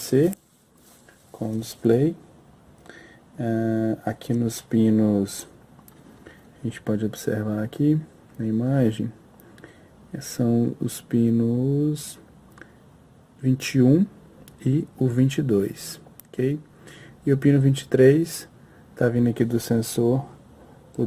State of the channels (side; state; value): both; identical; correlation 1.00